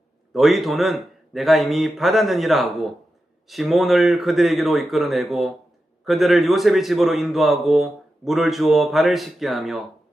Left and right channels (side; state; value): both; normal; correlation 0.90